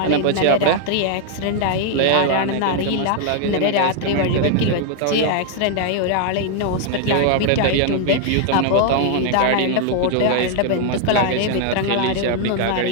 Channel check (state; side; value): different; both; correlation 0.00